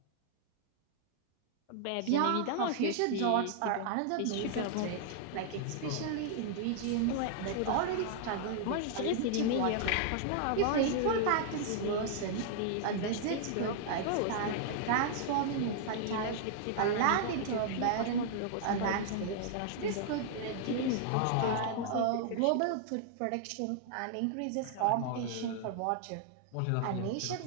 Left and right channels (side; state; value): both; different; correlation -0.01